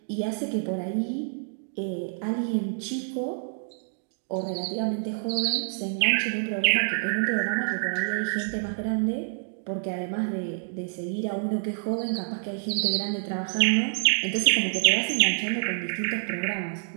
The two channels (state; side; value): silent; left; digital silence